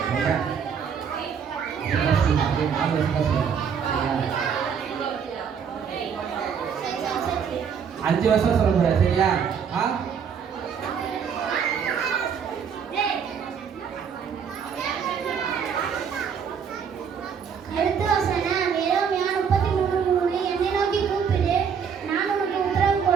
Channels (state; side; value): quieter; left; 7.0 dB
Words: அஞ்சு வருஷம் சொல்ல போற சரியா? அடுத்த வசனம் எரேமியா 33:3 என்னை நோக்கி கூப்பிடு நான் உனக்கு உத்தரவு